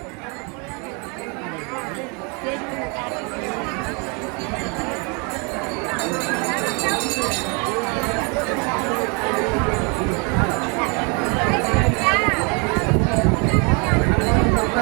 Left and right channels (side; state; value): left; quieter; 33.7 dB